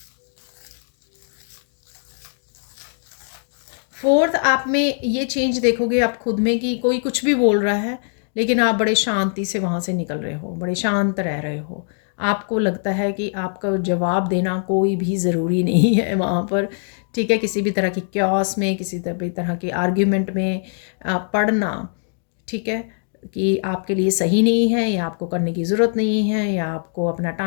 फोर्थ, आप में ये चेंज देखोगे आप खुद में कि कोई कुछ भी बोल रहा है, लेकिन आप बड़े शांति से वहाँ से निकल रहे हो, बड़े शांत रह रहे हो। आपको लगता है कि आपका जवाब देना कोई भी ज़रूरी नहीं है वहाँ पर, ठीक है। किसी भी तरह की क्योस में, किसी भी तरह की आर्ग्यूमेंट में पढ़ना, ठीक है, कि आपके लिए सही नहीं है, या आपको करने की ज़रूरत नहीं है, या आपको अपना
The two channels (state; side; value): silent; right; 60 dB below the other